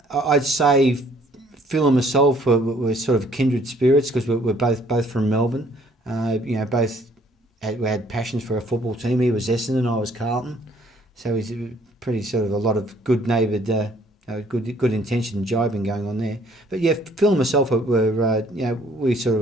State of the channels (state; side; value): normal; both; correlation 0.61